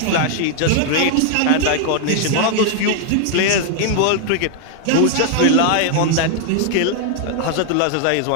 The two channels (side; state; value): both; different; correlation 0.00